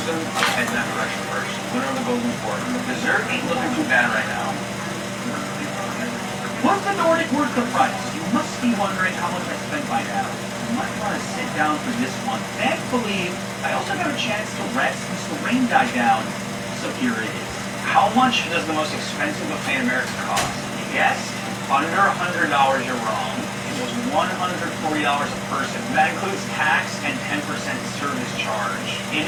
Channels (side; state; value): both; identical; correlation 1.00